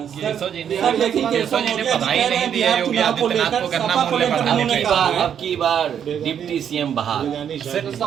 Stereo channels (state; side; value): quieter; left; 8.7 dB